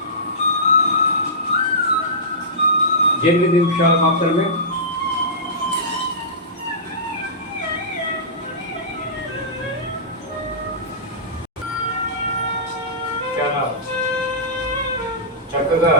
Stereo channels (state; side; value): normal; both; correlation -0.17